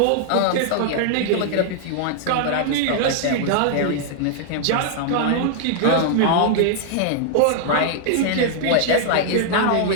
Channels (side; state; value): both; different; correlation -0.01